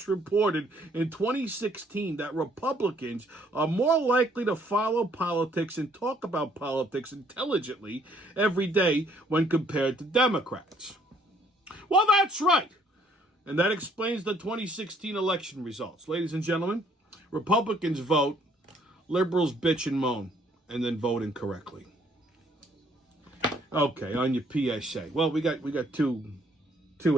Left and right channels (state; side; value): normal; both; correlation 0.64